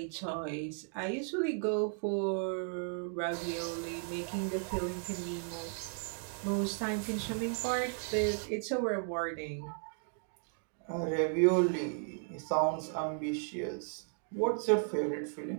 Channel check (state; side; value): silent; left; 54 dB below the other